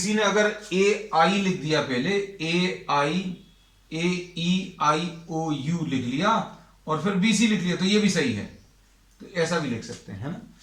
ने अगर ए आई लिख दिया पहले, ए आई ए ई आई ओ यू लिख लिया और फिर बी सी लिख लिया, तो ये भी सही है, तो ऐसा भी लिख सकते हैं, है ना।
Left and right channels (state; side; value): identical; both; correlation 1.00